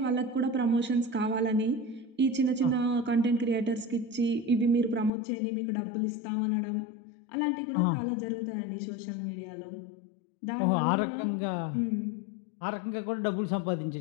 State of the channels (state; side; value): drops out; right; at 5.1 s